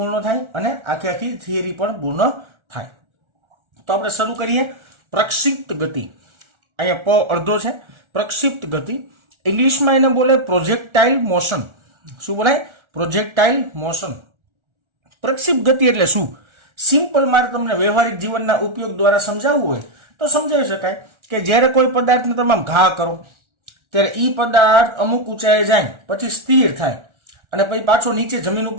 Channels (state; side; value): late; left; 1.4 ms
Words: થાય અને આખી થિયરી પણ પૂર્ણ થાય. તો આપણે શરૂ કરીએ. પ્રક્ષિપ્ત ગતિ, અહીંયા પ અડધો છે. પ્રક્ષિપ્ત ગતિ ઇંગ્લિશમાં એને બોલે પ્રોજેક્ટાઇલ મોશન. શું બોલાય? પ્રોજેક્ટાઇલ મોશન. પ્રક્ષિપ્ત ગતિ એટલે શું? સિમ્પલ મારે તમને વ્યવહારિક જીવનના ઉપયોગ દ્વારા સમજાવવું હોય તો સમજાવી શકાય કે જ્યારે કોઈ પદાર્થને તમે ઘા કરો ત્યારે એ પદાર્થ અમુક ઊંચાઈએ જાય, પછી સ્થિર થાય અને પછી પાછો નીચે જમીન